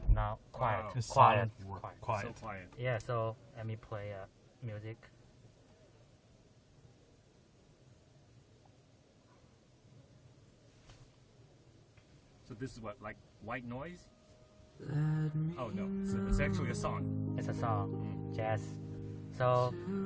Now, quiet. Wow. It's Quiet. silent. Quiet. Quiet. So quiet. Yeah, so let me play music. So this is what, like white noise? Oh no, it's actually a song. It's a song, jazz. So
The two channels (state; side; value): identical; both; correlation 1.00